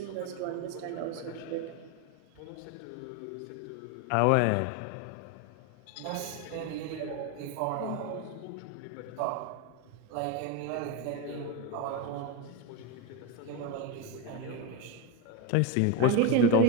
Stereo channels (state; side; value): different; both; correlation 0.03